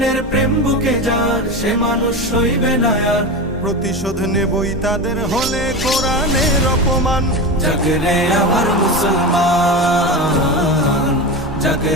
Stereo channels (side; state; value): both; normal; correlation 0.23